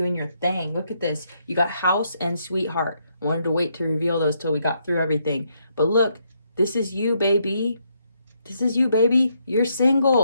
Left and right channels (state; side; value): inverted; both; correlation -0.76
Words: your thing. Look at this. You got house and sweetheart. I wanted to wait to reveal those till we got through everything. But look, this is you, baby. This is you, baby. You're